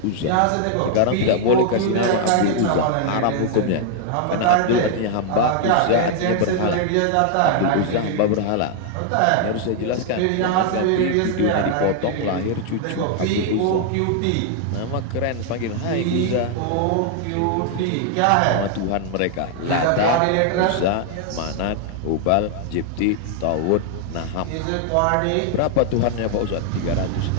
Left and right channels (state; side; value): different; both; correlation 0.00